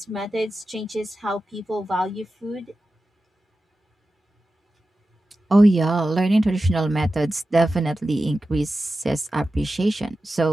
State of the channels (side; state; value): both; normal; correlation 0.93